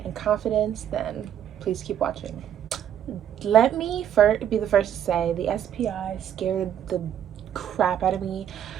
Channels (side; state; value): left; quieter; 10.0 dB